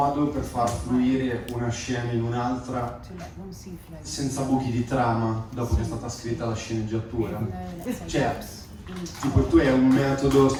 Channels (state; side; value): identical; both; correlation 1.00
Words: per far fluire una scena in un'altra senza buchi di trama dopo che è stata scritta la sceneggiatura? Cioè, tipo tu hai un metodo